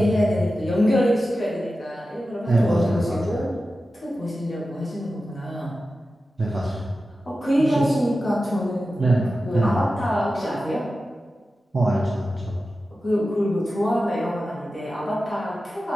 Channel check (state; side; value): normal; both; correlation 0.93